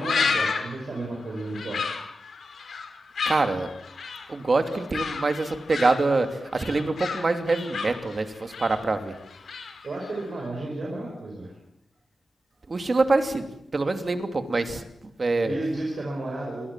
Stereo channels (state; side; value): normal; both; correlation 0.92